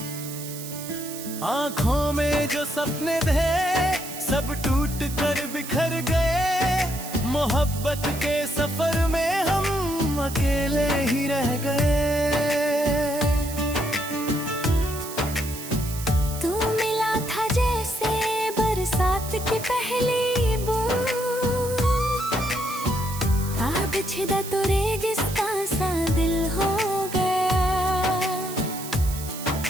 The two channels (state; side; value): noise; right; hiss, 11 dB below the sound